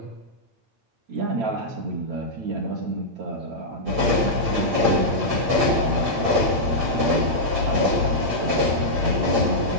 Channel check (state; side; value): late; left; 8.6 ms